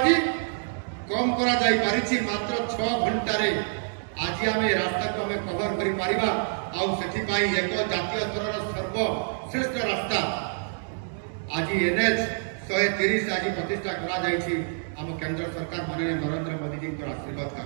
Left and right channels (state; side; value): silent; left; digital silence